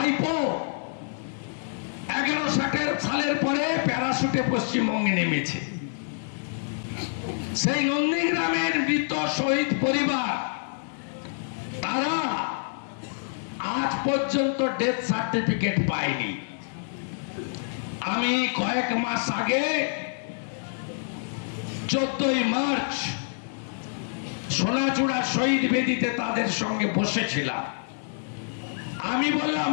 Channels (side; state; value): right; silent; digital silence